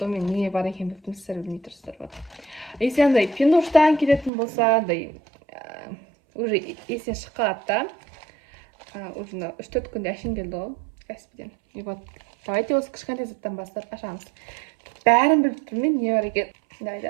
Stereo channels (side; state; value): left; drops out; at 4.3 s